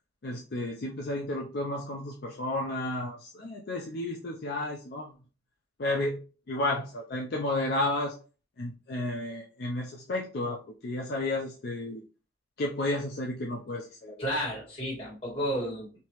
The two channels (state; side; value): normal; both; correlation 0.26